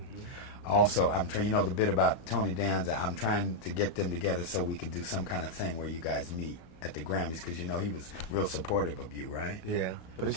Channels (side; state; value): right; late; 34 ms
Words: Also, I'm trying, you know the bit about Tony Danza, I'm trying to get them together so we could do some kind of thing where you guys meet at the Grammys, because you know he was real supportive of you, right? Yeah, but it